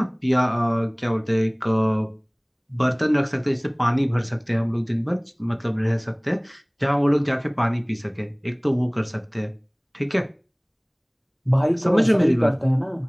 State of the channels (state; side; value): identical; both; correlation 1.00